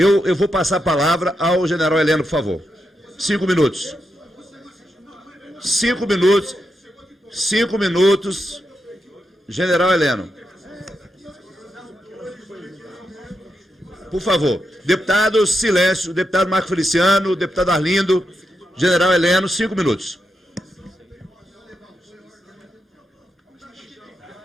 vou passar a palavra ao general Heleno, por favor. 5 minutos. 5 minutos. 5 minutos. General Heleno. Por favor. Deputados, silêncio. Deputado Marco Feliciano, deputado Arlindo, general Heleno, 5 minutos.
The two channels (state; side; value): normal; both; correlation 0.85